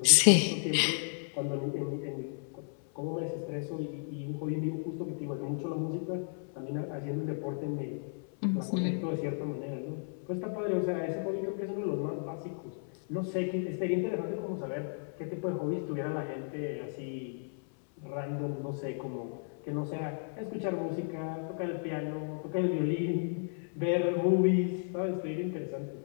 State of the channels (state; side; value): silent; right; 55 dB below the other